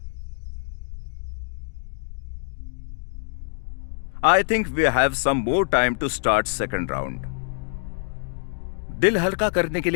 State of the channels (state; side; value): silent; right; digital silence